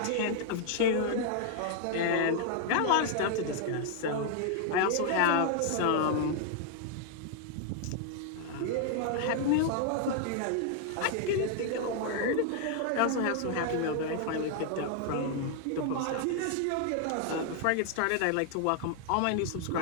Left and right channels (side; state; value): both; different; correlation 0.00